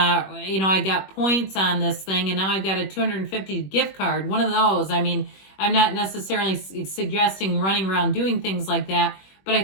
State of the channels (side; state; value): right; late; 21 ms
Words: you know, I got points on this thing, and now I've got a $250 gift card. One of those. I mean, I'm not necessarily suggesting running around doing things like that, but I